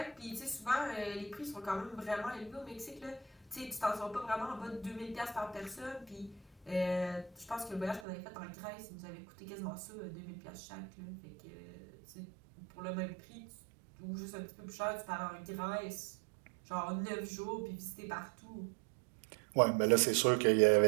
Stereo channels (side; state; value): left; drops out; at 8.1 s